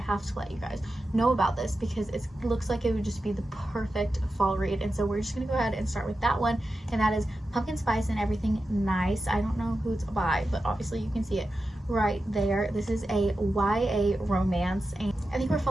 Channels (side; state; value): both; normal; correlation 0.91